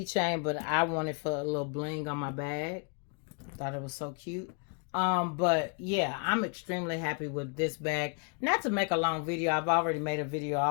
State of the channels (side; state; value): right; quieter; 39.8 dB